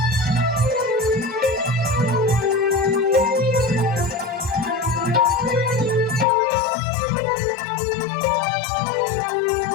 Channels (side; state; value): right; drops out; at 6.2 s